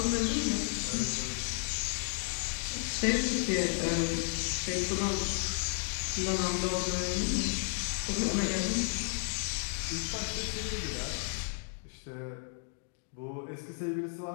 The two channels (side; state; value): right; silent; 56 dB below the other